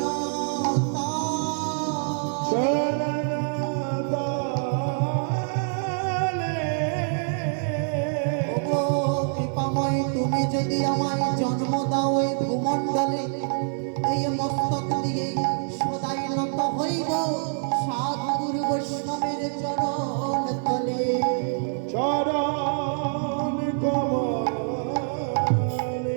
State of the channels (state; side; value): silent; left; digital silence